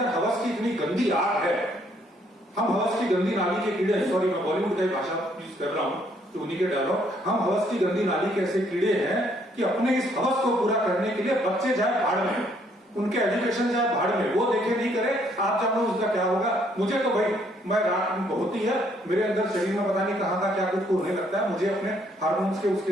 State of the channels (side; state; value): both; normal; correlation 0.67